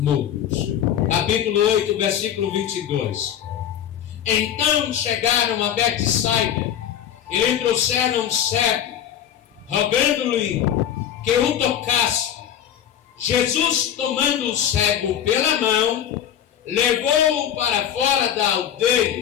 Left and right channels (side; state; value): right; quieter; 9.9 dB